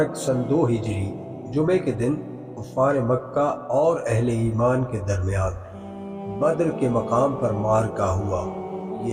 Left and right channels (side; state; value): both; identical; correlation 1.00